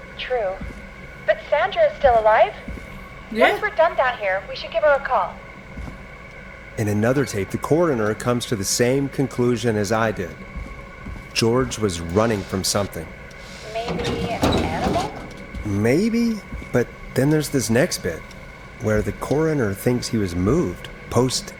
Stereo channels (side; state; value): both; identical; correlation 1.00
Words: True. But Sandra is still alive? Yeah. Once we're done down here, we should give her a call. In another tape, the coroner comes to the same conclusion as I did. George was running from something. Maybe an animal? Maybe, but then there's this next bit, where the coroner thinks he was moved